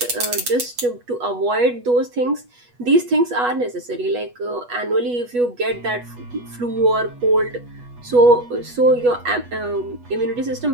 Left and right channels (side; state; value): left; late; 8.2 ms